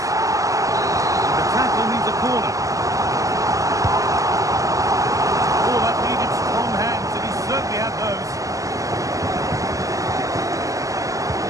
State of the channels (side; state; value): left; late; 0.16 ms